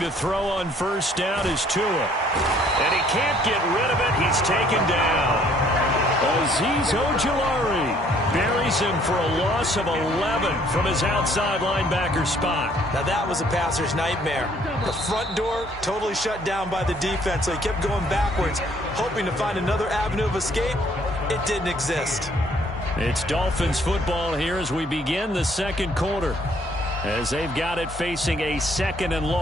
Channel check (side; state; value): both; normal; correlation 0.62